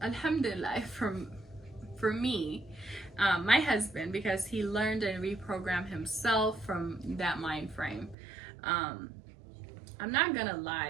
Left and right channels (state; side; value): drops out; left; at 8.2 s